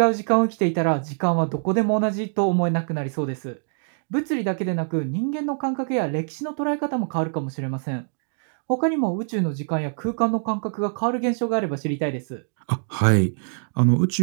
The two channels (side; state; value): left; silent; digital silence